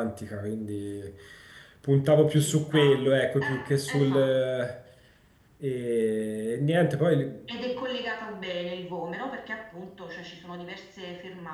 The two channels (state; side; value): identical; both; correlation 1.00